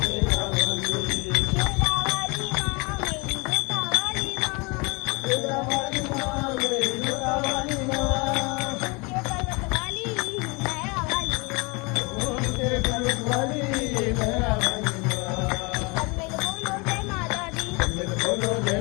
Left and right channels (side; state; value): right; quieter; 28.9 dB